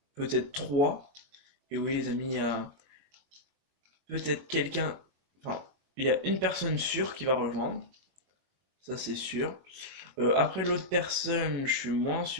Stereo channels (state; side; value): late; left; 22 ms